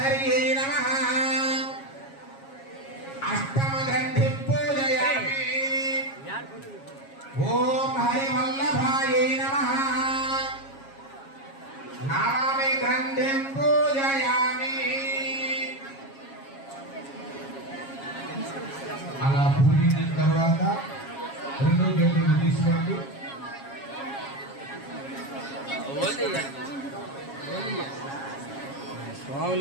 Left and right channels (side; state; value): right; late; 7.3 ms